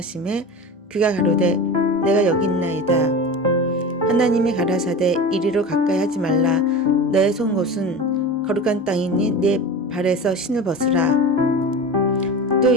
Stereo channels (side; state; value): both; normal; correlation 0.30